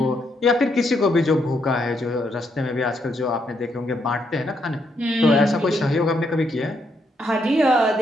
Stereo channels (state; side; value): normal; both; correlation 0.76